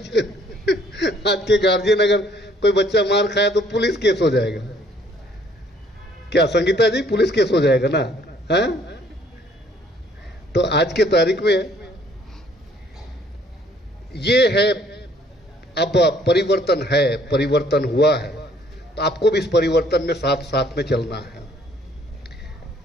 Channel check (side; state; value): both; normal; correlation 0.61